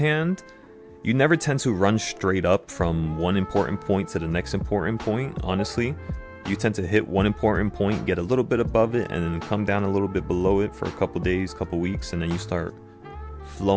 you never tend to run straight up from one important point to the next important point, honestly. You tend to hit one important point, get a little bit above it, and then come down a little bit below it for a couple days, couple weeks, and then you start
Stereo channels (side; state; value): both; identical; correlation 1.00